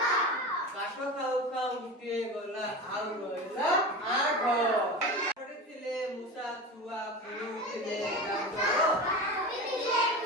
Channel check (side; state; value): both; normal; correlation 0.28